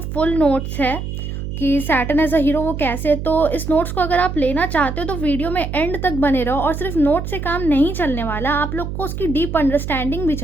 फुल नोट्स है कि सैटर्न एज अ हीरो वो कैसे है। तो इस नोट्स को अगर आप लेना चाहते हो तो वीडियो में एंड तक बने रहो। और सिर्फ नोट से काम नहीं चलने वाला, आप लोग को उसकी डीप अंडरस्टैंडिंग भी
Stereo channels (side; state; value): right; noise; hum, 6 dB below the sound